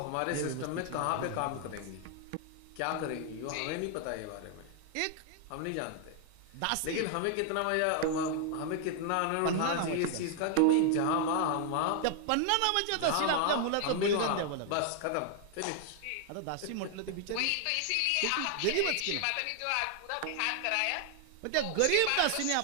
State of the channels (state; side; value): different; both; correlation 0.00